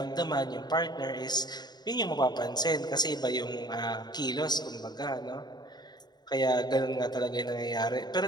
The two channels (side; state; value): right; late; 0.20 ms